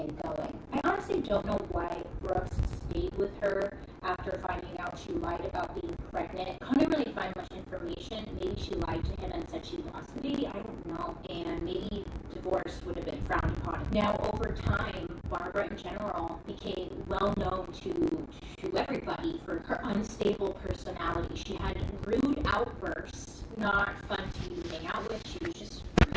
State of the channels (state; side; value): identical; both; correlation 1.00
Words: going. I honestly don't know why Brooks stayed with her after finding out she lied about being pregnant. I couldn't really find much information. Maybe she lied to him and said she lost the baby. I don't know. And maybe divorce would have been frowned upon. Now, over time, Barbara in general became well known to everybody for her unstable personality. She had rude outbursts, not fun to hang out with. She was just